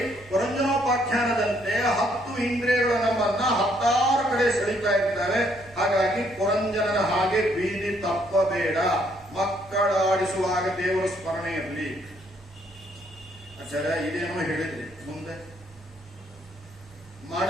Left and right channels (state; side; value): normal; both; correlation 0.69